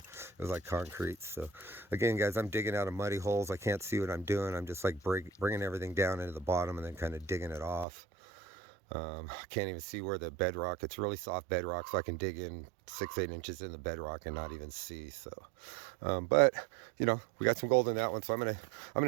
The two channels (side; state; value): left; drops out; at 7.9 s